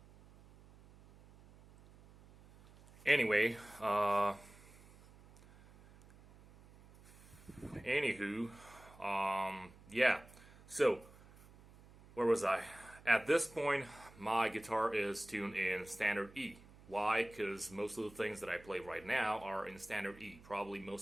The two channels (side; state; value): right; noise; hum, 22 dB below the sound